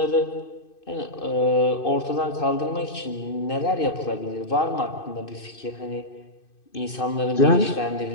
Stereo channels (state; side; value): late; right; 2.6 ms